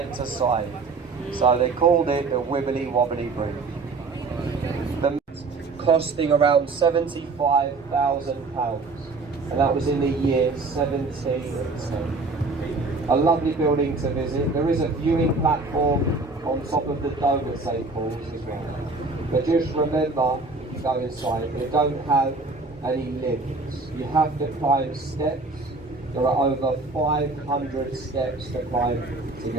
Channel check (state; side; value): quieter; left; 3.7 dB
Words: to side. So they called it the Wibbly Wobbly Bridge. The costing around £75,000, and that was in the year 1710. A lovely building to visit. There is a viewing platform on top of the dome at St Paul's as well. But just remember, if you go inside, they don't have any lifts. You have to climb steps. There are over 500 steps to climb to